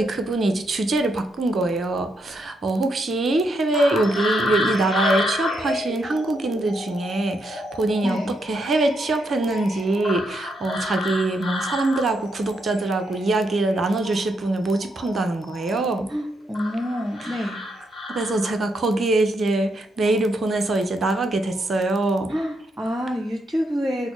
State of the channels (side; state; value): both; normal; correlation 0.79